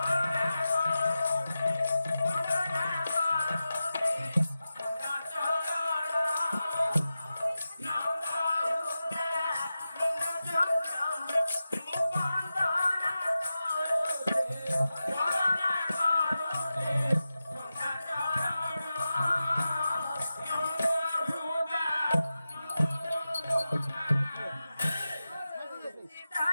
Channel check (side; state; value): both; inverted; correlation -0.93